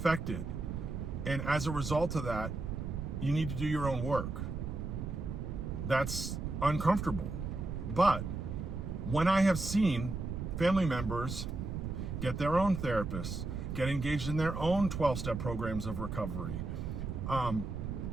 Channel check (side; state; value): right; noise; rumble, 4 dB below the sound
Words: And as a result of that, you need to do your own work. That's uncomfortable. But when I have seen family members get their own therapists, get engaged in their own 12-step programs of recovery,